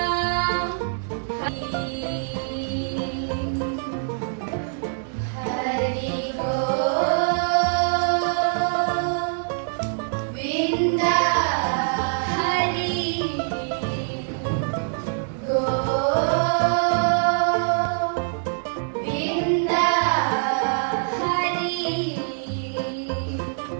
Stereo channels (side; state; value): left; silent; digital silence